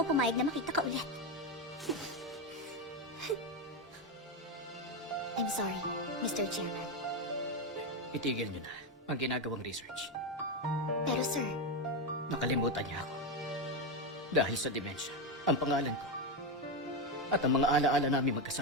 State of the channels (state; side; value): normal; both; correlation 0.10